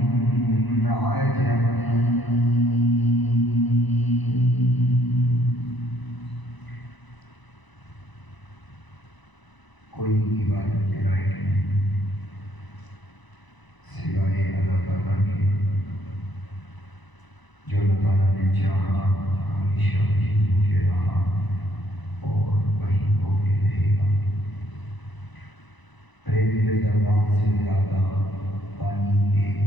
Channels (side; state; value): right; late; 1.0 ms